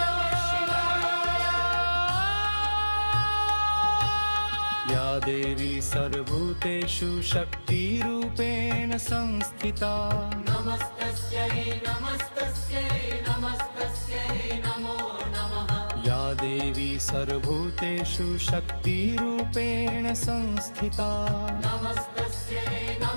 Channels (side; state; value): both; inverted; correlation -1.00